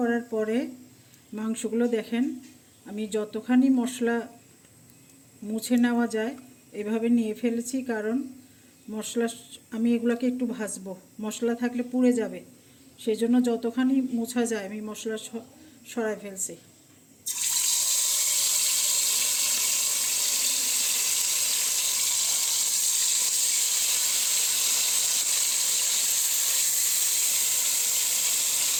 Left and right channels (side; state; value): both; identical; correlation 1.00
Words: পরে মাংসগুলো দেখেন, আমি যতখানি মশলা মুছে নেওয়া যায় এভাবে নিয়ে ফেলেছি, কারণ মশলা, আমি এগুলোকে একটু ভাজবো, মশলা থাকলে পুড়ে যাবে, সেই জন্য যতখানি মোছা যায় আমি মশলা সরাই ফেলছি।